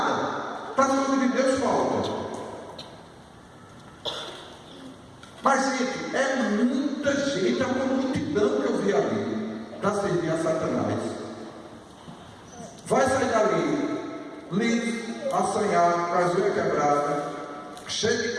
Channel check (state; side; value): identical; both; correlation 1.00